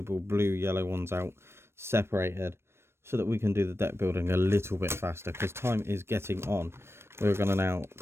blue yellow ones out separated so that we can do the deck building a little bit faster because time is getting on. We're going to now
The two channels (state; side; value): late; left; 0.12 ms